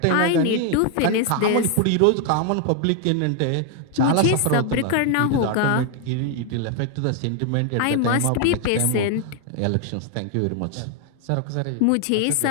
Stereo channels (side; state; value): both; different; correlation 0.00